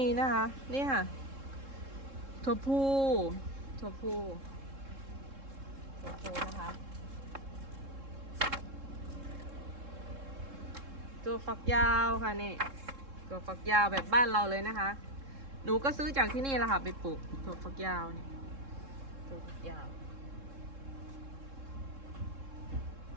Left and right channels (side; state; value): left; late; 3.7 ms